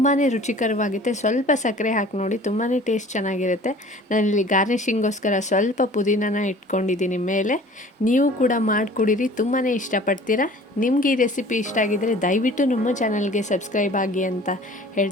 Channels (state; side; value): normal; both; correlation 0.47